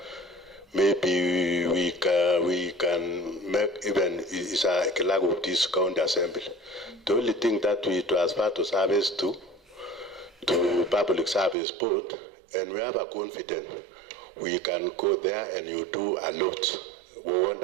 maybe we can make even is a clerk of this county assembly. The only thing that we transfer to service to public service board, and we have a confidence we can go there and you do a lot,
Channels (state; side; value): drops out; left; at 11.6 s